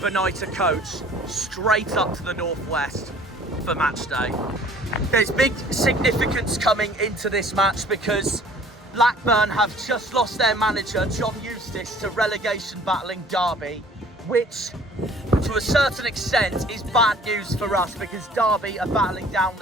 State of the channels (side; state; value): both; normal; correlation 0.52